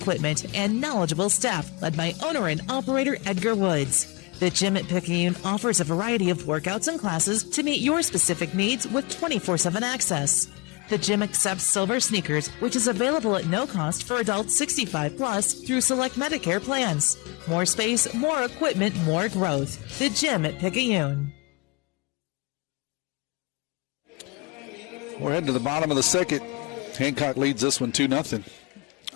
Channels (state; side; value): quieter; right; 28.1 dB